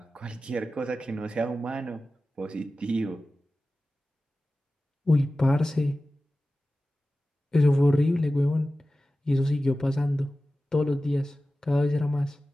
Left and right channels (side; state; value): both; normal; correlation 0.95